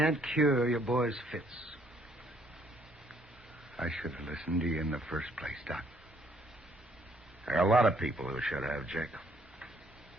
cure your boy's fits. I should have listened to you in the first place, Doc. There are a lot of people who should have, Jake.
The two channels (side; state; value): both; normal; correlation 0.66